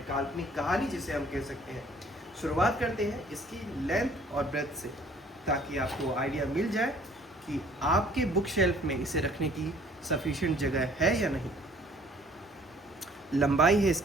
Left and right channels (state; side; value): normal; both; correlation 0.56